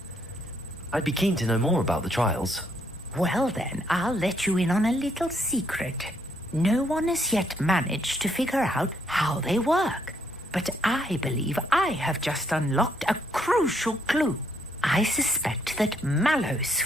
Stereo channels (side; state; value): both; normal; correlation 0.72